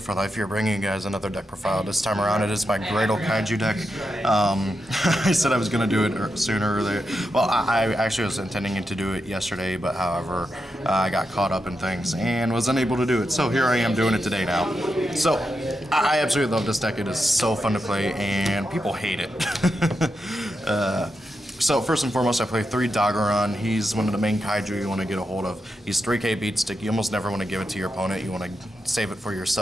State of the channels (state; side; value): normal; both; correlation 0.86